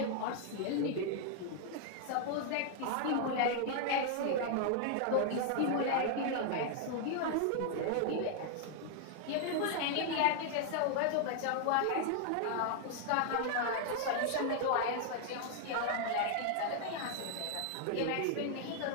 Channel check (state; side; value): different; both; correlation 0.00